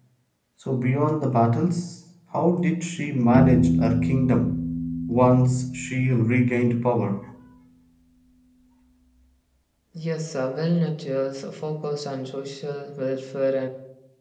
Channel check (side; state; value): both; identical; correlation 1.00